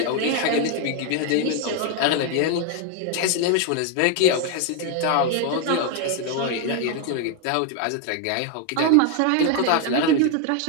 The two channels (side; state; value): both; different; correlation 0.01